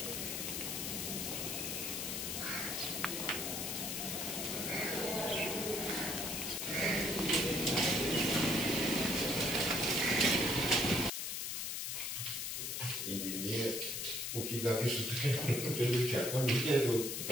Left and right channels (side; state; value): left; noise; hiss, 2 dB below the sound